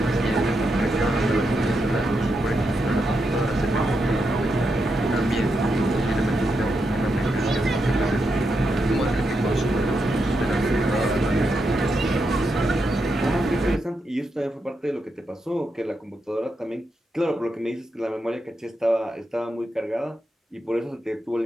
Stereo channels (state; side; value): normal; both; correlation 0.84